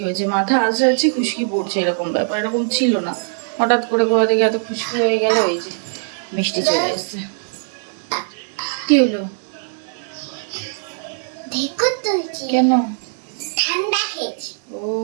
হয়েছে, মাথা আসে আছে খুশকি পড়ছে, এরকম ব্যাপার এরকম ছিল না, হঠাৎ করে কোথা থেকে এত খুশকি হয়ে গেল। এই যে মিষ্টি চলে এসছে, কি হলো কেন? ঠান্ডা খেয়েছি। ও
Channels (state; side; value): silent; left; digital silence